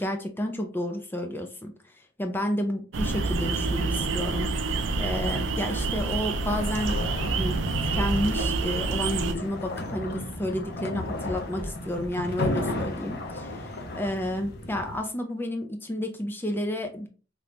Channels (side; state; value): both; normal; correlation 0.65